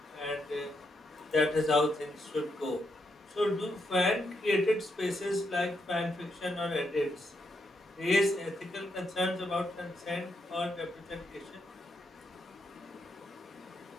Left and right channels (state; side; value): normal; both; correlation 0.80